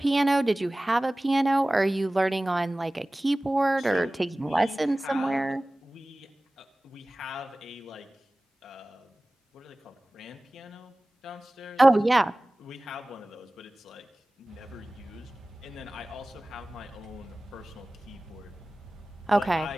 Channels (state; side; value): normal; both; correlation 0.98